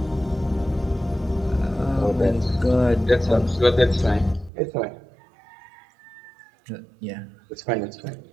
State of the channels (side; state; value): left; drops out; at 4.5 s